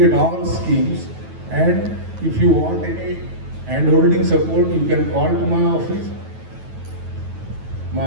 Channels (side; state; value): left; late; 9.3 ms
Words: all schemes, and if you want any hand-holding support, you can call to my office.